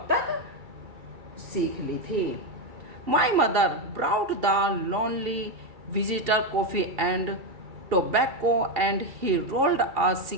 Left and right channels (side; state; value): left; late; 2.7 ms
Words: तक सीख ली थी। My mother brewed the lonely visitor coffee and tobacco and he rolled a